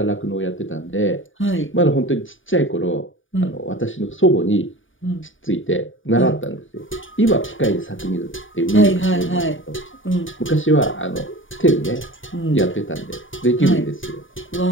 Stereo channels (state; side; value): late; right; 0.57 ms